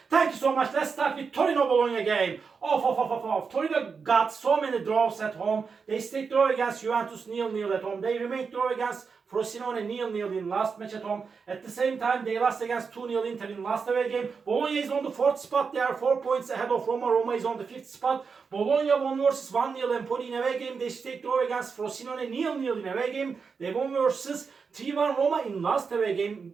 Thank you so much. Let's start with Torino Bologna game. Torino got so many draws at home. They stayed draw against Juventus 0-0 at home. They remained draw against Frosinone 0-0 in last match at home. At the same time, they lost against 2-0 Inter in last away game. Bologna is on the 4th spot. They are 4 points ahead of Roma. Roma is on the 5th spot. Bologna won versus 1-0 Empoli in away game. They stayed draw against Frosinone 0-0 in away game. They won versus 3-1 Roma in last away game,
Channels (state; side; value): quieter; left; 5.4 dB